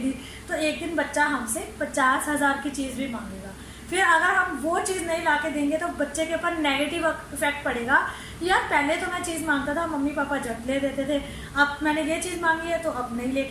तो एक दिन बच्चा हमसे 50,000 की चीज़ भी मांगेगा। फिर अगर हम वो चीज़ नहीं ला के देंगे तो बच्चे के ऊपर नेगेटिव इफेक्ट पड़ेगा। यार पहले तो मैं चीज़ मांगता था, मम्मी पापा जब ले देते थे, अब मैंने ये चीज़ मांगी है तो अब नहीं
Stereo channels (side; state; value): both; identical; correlation 1.00